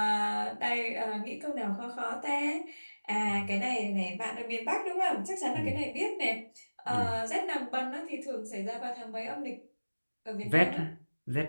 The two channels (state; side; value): inverted; both; correlation -1.00